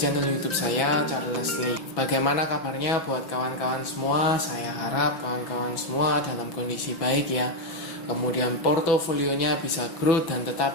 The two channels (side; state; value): right; late; 6.1 ms